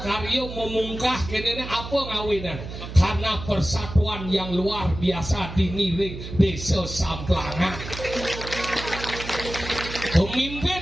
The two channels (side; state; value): right; noise; hum, 10 dB below the sound